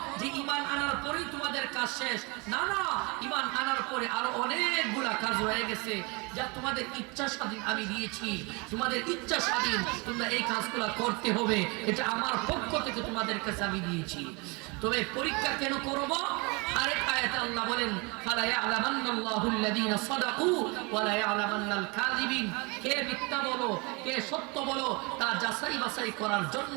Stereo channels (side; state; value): left; quieter; 28.8 dB